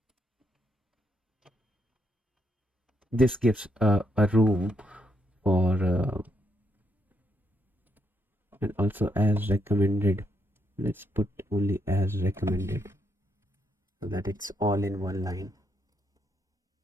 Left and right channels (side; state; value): both; normal; correlation 0.77